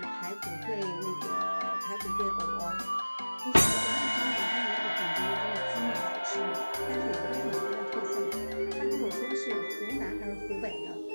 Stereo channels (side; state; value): both; inverted; correlation -1.00